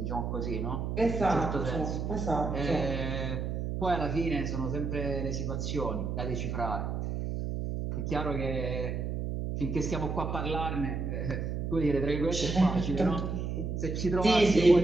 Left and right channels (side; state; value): right; noise; hum, 2 dB below the sound